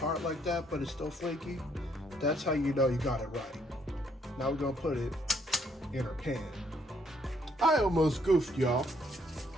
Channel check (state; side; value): normal; both; correlation 0.69